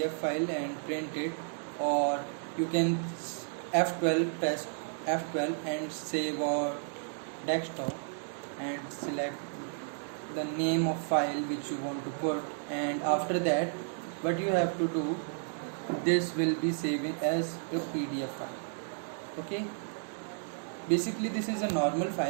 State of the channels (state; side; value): silent; left; 56 dB below the other